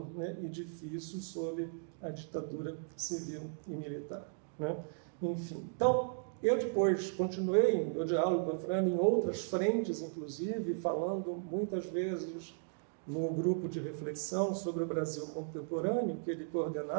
né, e difícil sob a ditadura civil e militar, né? Enfim, então, eu depois continuei meu diálogo com a Afrânio em outras frentes, inclusive, falando muitas vezes no grupo de reflexão sobre o Brasil contemporâneo, que ele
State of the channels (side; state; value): left; silent; digital silence